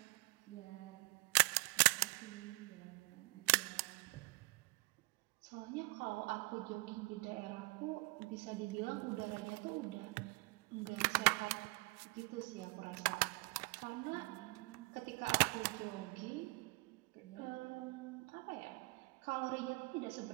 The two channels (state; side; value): quieter; left; 27.4 dB